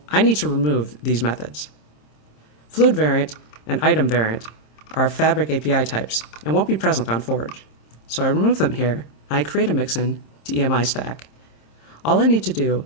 I need to remove these methods. Fluid variant and item variant are Fabric API types and won't be present on Forge. So I remove them here, and I create a Mixin to EMI stack. All I need to do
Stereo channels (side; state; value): right; late; 26 ms